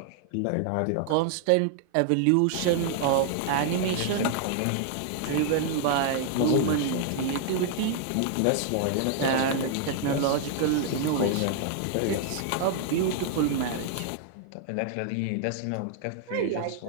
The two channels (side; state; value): both; different; correlation -0.01